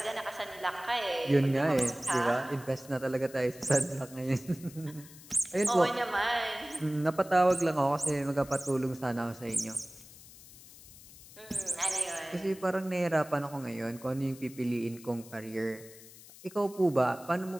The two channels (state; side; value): noise; left; hiss, 19 dB below the sound